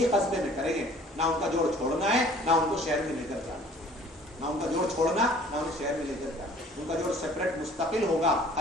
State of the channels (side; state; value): both; normal; correlation 0.53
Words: قصبے میں کریں گے. نہ ان کا جوڑ چھوڑنا ہے, نہ ان کو شہر میں لے کر جانا, نہ ان کا جوڑ چھوڑنا, نہ انہیں شہر میں لے کر جانا. ان کا جوڑ سیپریٹ مستقل ہوگا